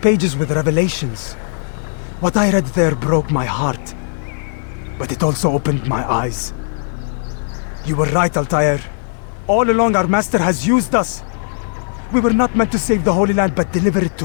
with revelations. What I read there broke my heart. But it also opened my eyes. You were right, Altair. All along our master has used us. We were not meant to save the Holy Land, but deliver it to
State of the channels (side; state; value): right; silent; digital silence